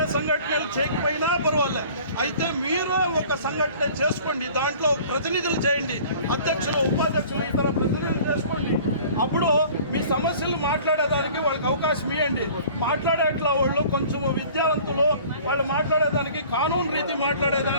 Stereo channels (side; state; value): both; inverted; correlation -0.47